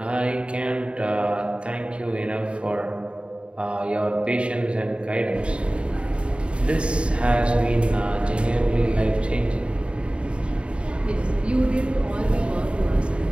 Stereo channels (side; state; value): left; late; 0.057 ms